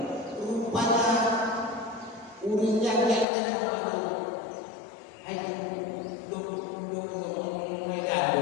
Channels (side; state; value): right; drops out; at 3.2 s